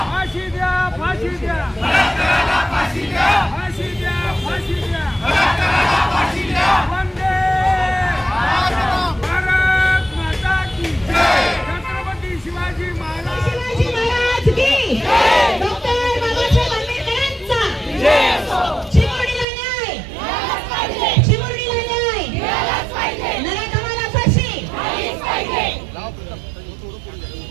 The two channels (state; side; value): drops out; left; at 19.5 s